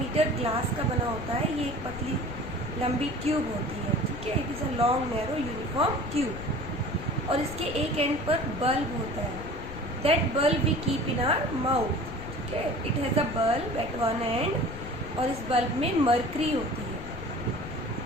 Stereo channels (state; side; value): noise; left; rumble, 10 dB below the sound